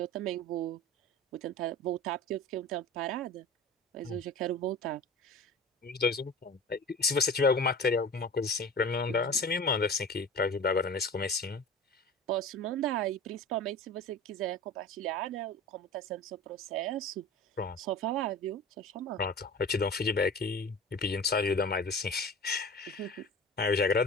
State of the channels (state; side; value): normal; both; correlation 0.36